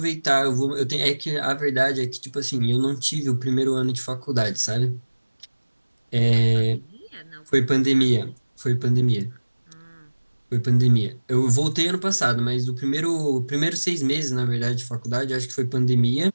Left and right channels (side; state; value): both; inverted; correlation -1.00